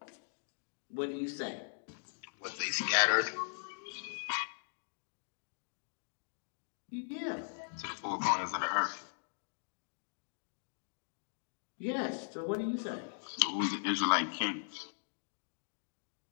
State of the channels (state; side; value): silent; right; digital silence